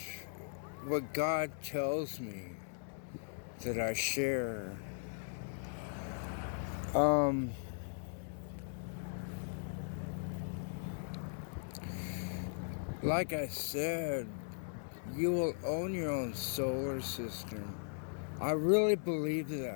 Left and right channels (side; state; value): right; silent; digital silence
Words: what God tells me that I share. Like I said, you will own your own solar system. I really believe